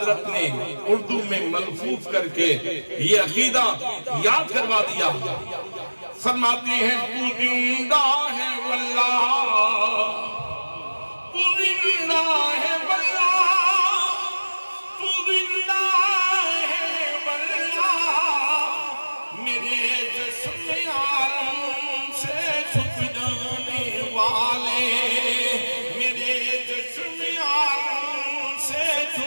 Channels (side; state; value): both; inverted; correlation -1.00